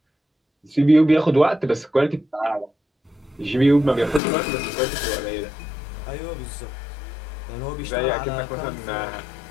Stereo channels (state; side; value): drops out; right; at 4.2 s